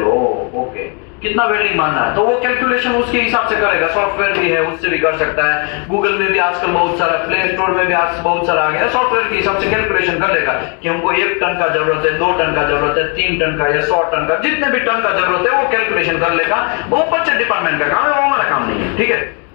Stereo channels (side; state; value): right; quieter; 35.8 dB